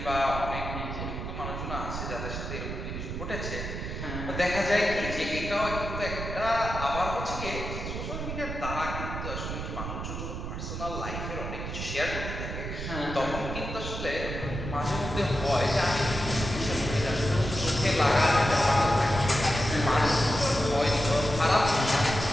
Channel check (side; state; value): right; noise; rumble, 6 dB below the sound